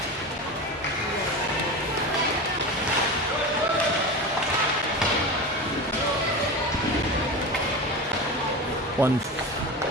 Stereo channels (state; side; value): normal; both; correlation 0.26